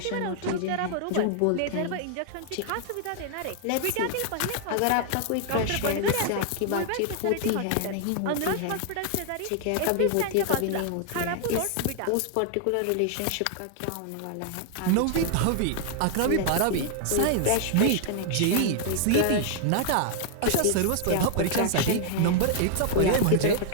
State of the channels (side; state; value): both; different; correlation 0.00